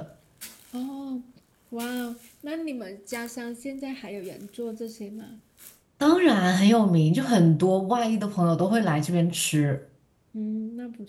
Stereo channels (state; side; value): identical; both; correlation 1.00